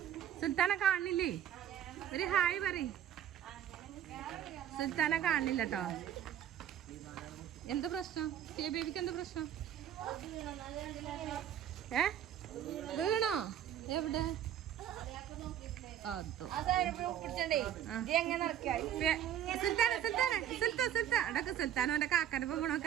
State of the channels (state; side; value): quieter; left; 10.3 dB